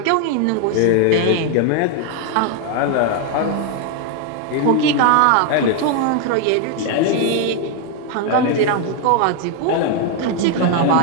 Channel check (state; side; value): different; both; correlation 0.01